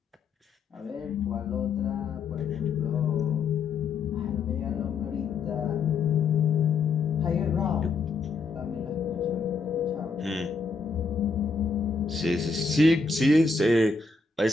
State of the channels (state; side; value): quieter; right; 4.5 dB